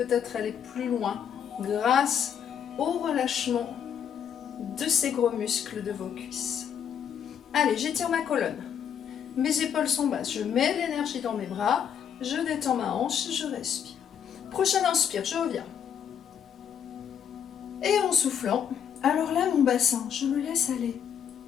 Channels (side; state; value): right; quieter; 8.3 dB